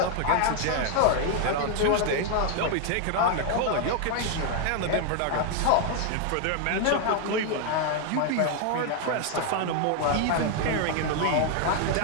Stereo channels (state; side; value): different; both; correlation 0.00